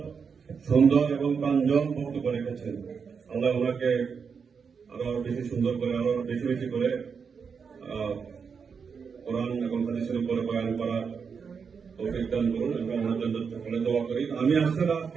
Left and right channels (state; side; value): quieter; left; 6.0 dB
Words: সুন্দর এবং প্রাঞ্জল বক্তব্য রেখেছেন। আল্লাহ ওনাকে আরো বেশি সুন্দর করে, আরো বেশি বেশি করে কোরআন এবং হাদিসের উপরে বয়ান করা তৌফিক দান করুন এবং ওনার জন্য সকলে দোয়া করি। আমি